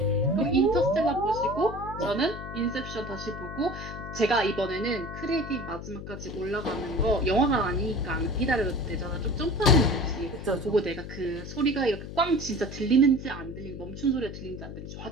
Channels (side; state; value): left; noise; hum, 10 dB below the sound